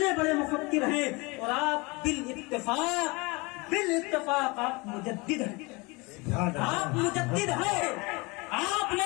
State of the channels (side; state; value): right; quieter; 26.1 dB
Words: بڑے مفکر ہیں، اور آپ بالاتفاق آپ مجدد ہیں، آپ مجدد ہیں۔ آپ